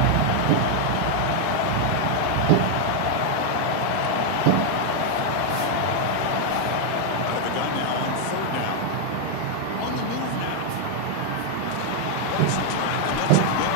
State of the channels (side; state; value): both; different; correlation 0.00